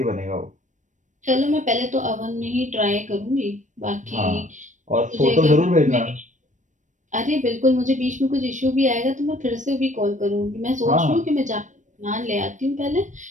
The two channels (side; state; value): left; late; 0.36 ms